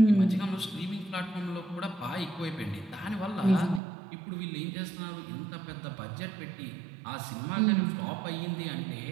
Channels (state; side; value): drops out; left; at 3.8 s